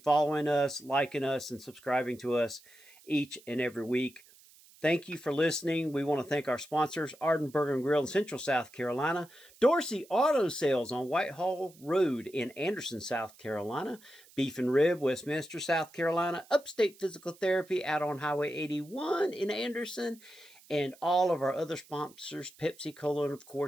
us, liking us, and subscribing to us each and every week. Thank you for listening. We want to thank our sponsors, Arden Burger and Grill in Central South Carolina, Dorsey Auto Sales on Whitehall Road in Anderson, South Carolina, Beef and Rib, Westminster, South Carolina, Upstate Physical Therapy out on Highway 81 in Anderson, and all of our other sponsors, Pepsi Cola, and of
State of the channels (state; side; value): noise; right; hiss, 25 dB below the sound